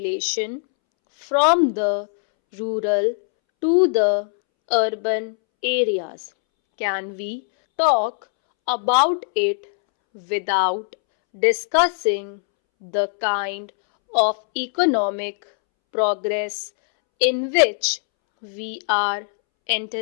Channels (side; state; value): right; silent; 65 dB below the other